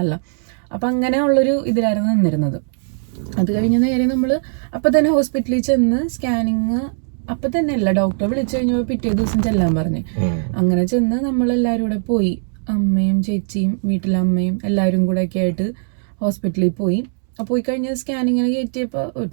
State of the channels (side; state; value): left; silent; 66 dB below the other